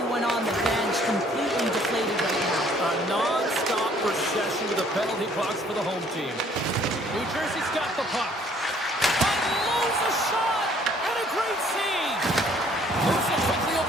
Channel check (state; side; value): normal; both; correlation 0.60